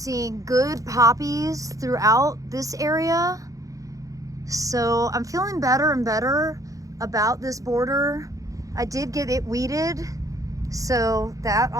good poppies throughout this area. So I'm feeling better and better about this border. I did get it weeded, so that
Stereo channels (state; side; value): late; left; 0.16 ms